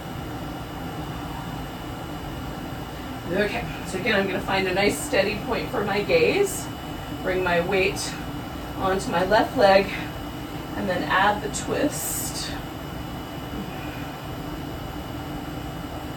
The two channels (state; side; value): identical; both; correlation 1.00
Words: Okay, so again, I'm going to find a nice steady point for my gaze, bring my weight onto my left leg, and then add the twist.